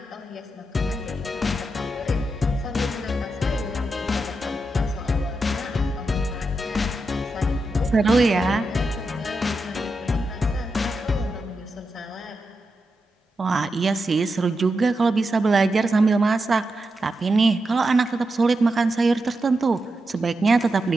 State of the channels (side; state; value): both; normal; correlation 0.87